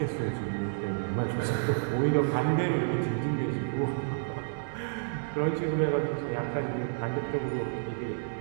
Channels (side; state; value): left; silent; 58 dB below the other